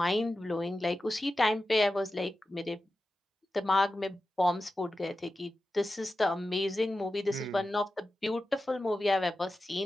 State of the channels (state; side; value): normal; both; correlation 0.92